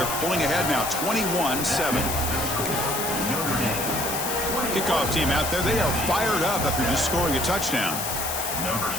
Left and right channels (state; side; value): noise; left; hiss, 3 dB below the sound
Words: pulling ahead now, 21-7. Kickoff team out there. They are fired up after just scoring a touchdown. Number